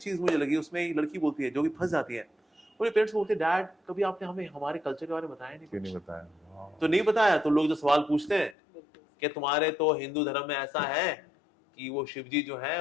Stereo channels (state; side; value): drops out; right; at 8.6 s